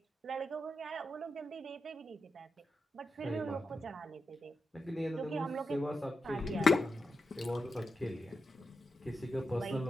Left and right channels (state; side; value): normal; both; correlation 0.88